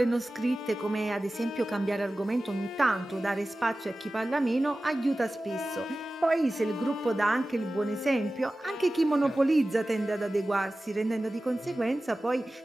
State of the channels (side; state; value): both; normal; correlation 0.96